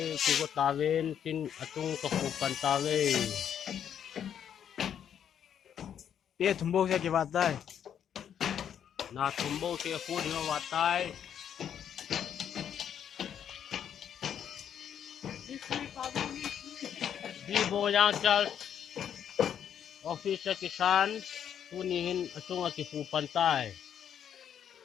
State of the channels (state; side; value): quieter; right; 9.0 dB